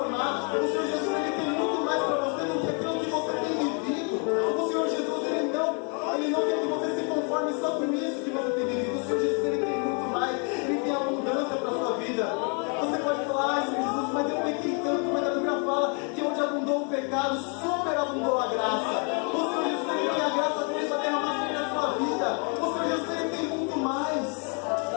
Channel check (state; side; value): quieter; right; 37.9 dB